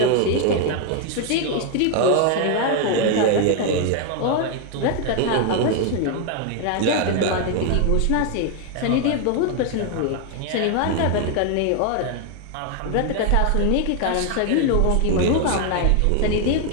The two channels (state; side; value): different; both; correlation 0.01